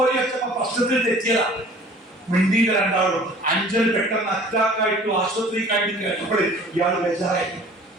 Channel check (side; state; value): both; normal; correlation 0.49